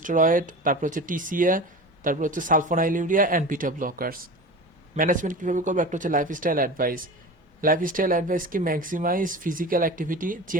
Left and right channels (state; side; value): normal; both; correlation 0.32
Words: তারপর হচ্ছে টিসিএ, তারপর হচ্ছে sulfonylurea and beta blockers. Management কীভাবে করবো? একটা হচ্ছে লাইফস্টাইল অ্যাডভাইস কি? Maximise physical activity,